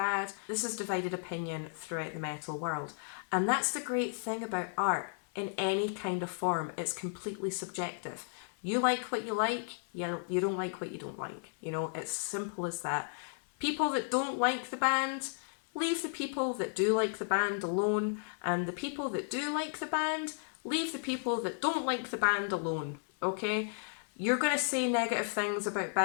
This is divided opinion throughout the metal world. And that's the great thing about art in any kind of form. It's completely subjective. You like what you like, you don't like what you don't like. You know, it's simple as that. People that don't like the band, leave the people that do like the band alone. And the people that do like the band, leave the people that don't like the band alone. Okay? You're going to say negative things about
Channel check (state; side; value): silent; right; 55 dB below the other